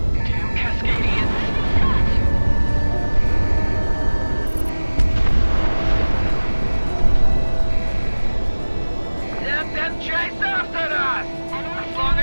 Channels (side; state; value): both; inverted; correlation -1.00